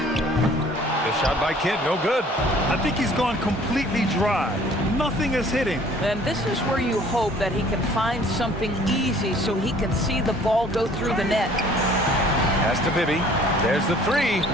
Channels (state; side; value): normal; both; correlation 0.54